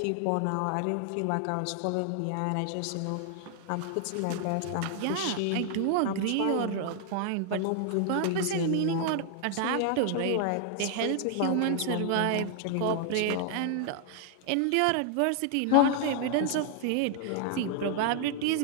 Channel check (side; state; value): both; different; correlation 0.00